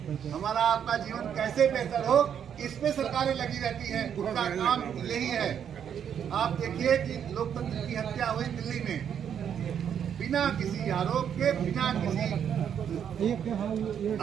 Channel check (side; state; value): left; quieter; 8.5 dB